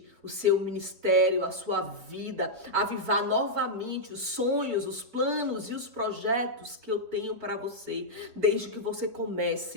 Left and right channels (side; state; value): left; late; 4.6 ms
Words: o seu ministério, a sua vida, avivar novamente os sonhos, os planos e os projetos que eu tenho para você, desde que você